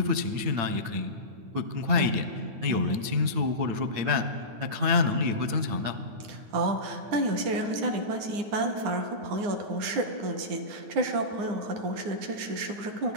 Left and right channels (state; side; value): late; left; 9.5 ms